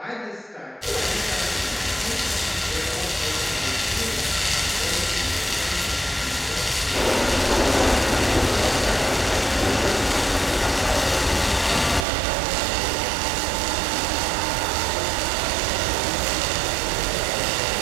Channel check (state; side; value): drops out; left; at 12.1 s